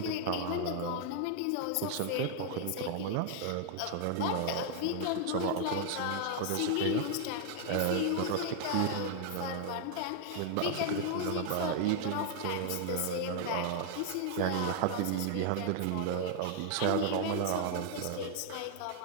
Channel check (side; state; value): both; different; correlation -0.01